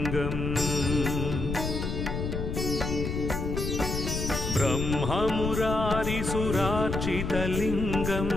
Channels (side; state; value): left; noise; rumble, 3 dB below the sound